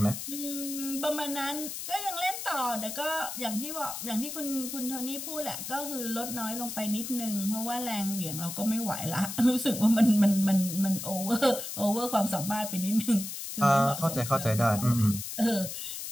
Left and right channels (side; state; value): left; noise; hiss, 7 dB below the sound